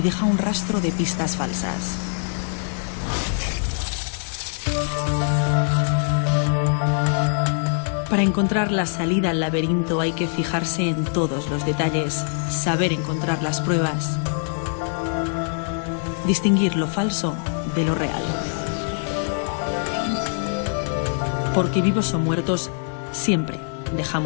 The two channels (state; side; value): silent; right; 63 dB below the other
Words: un rastro de pistas falsas. Para encontrar la salida al laberinto hay que fijarse en todos los detalles, saber encontrar las pruebas, distinguir lo falso de lo real. Porque vivos o muertos, siempre